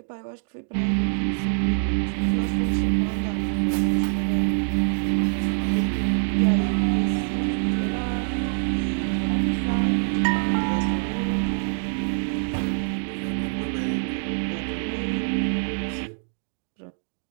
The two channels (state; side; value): silent; left; digital silence